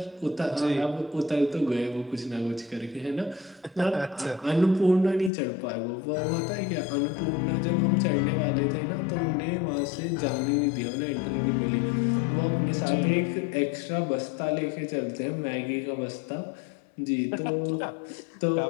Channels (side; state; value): right; drops out; at 5.3 s